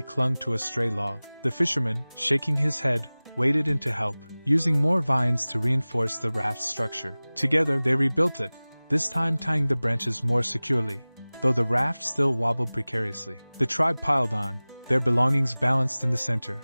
clung to a stray log. The fisherman, shaking his head, waded in to help, using more vines to reinforce the raft's structure. Together they rebuilt it, this time tying the branches more securely, though the raft still wobbled precariously. The tribe piled on, their belongings balanced in the center,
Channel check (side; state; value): both; inverted; correlation -0.99